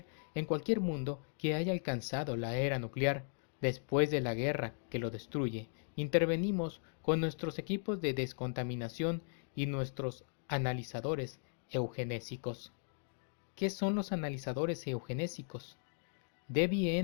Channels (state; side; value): silent; right; digital silence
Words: en cualquier mundo que haya alcanzado la era nuclear. Después de la guerra que lo destruye, intervenimos con nuestros equipos de descontaminación y nuestros analizadores eugenésicos. ¿Qué son los analizadores eugenésicos?